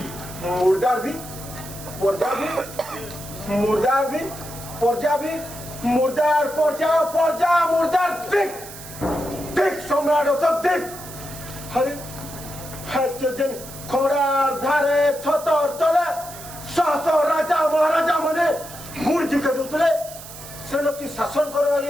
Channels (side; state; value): right; noise; hiss, 14 dB below the sound